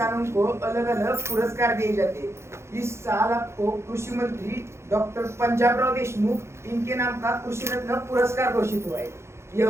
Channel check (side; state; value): left; late; 0.13 ms